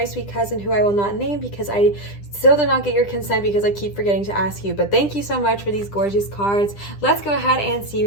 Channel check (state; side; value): late; right; 10 ms